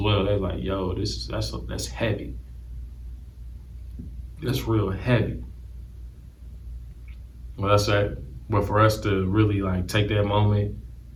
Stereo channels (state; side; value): identical; both; correlation 1.00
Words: They're like, yo, that's heavy. That's real heavy. Well, that's that. But for us to really like take that moment